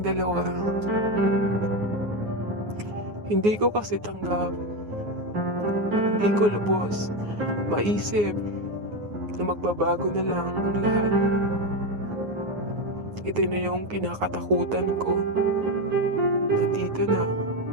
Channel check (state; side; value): late; left; 9.5 ms